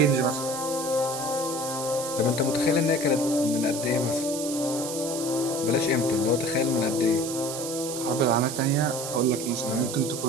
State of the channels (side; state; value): right; noise; hiss, 7 dB below the sound